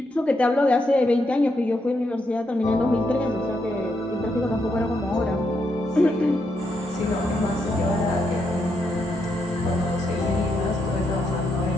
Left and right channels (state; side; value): normal; both; correlation 0.80